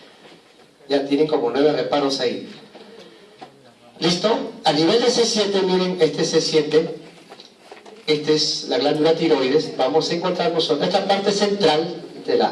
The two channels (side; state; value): both; identical; correlation 1.00